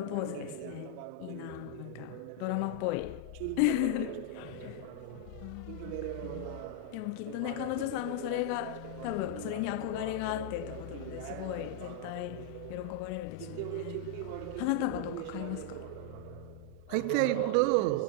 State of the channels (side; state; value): both; different; correlation 0.00